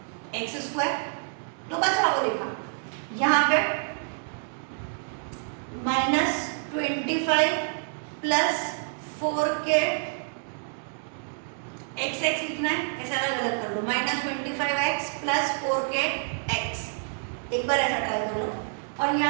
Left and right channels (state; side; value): silent; left; 59 dB below the other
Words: x square, तो बचा वो लिखा। यहाँ पे minus 25 plus 4k x x लिखना है, ऐसा अलग अलग कर लो, minus 25x plus 4k x, एक बार ऐसा ट्राई कर लो। और